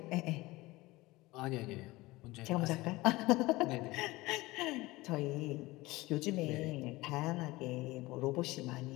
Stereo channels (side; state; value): right; quieter; 20.3 dB